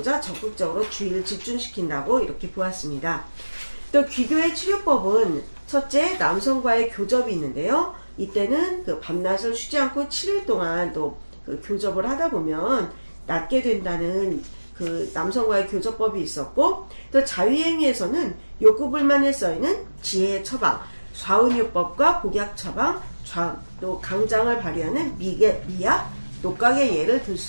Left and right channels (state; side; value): inverted; both; correlation -1.00